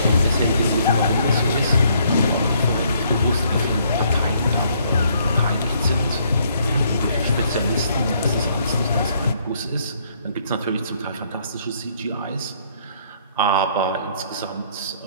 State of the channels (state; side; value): inverted; both; correlation -0.67